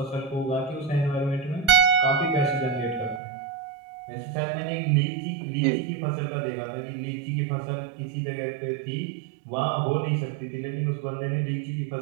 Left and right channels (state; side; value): drops out; left; at 3.2 s